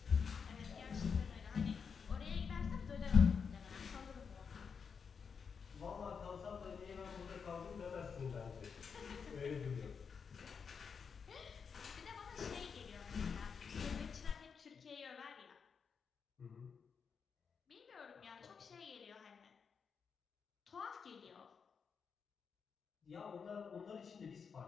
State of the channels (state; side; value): quieter; right; 6.1 dB